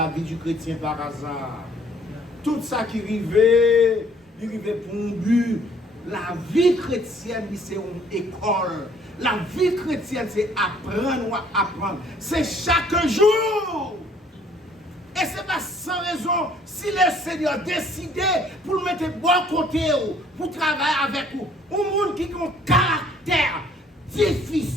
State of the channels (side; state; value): both; normal; correlation 0.59